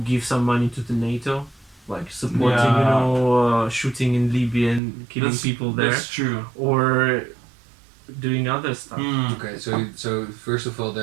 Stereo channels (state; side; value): drops out; left; at 4.8 s